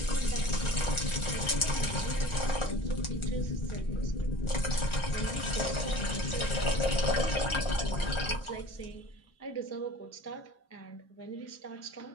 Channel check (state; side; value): late; right; 1.4 ms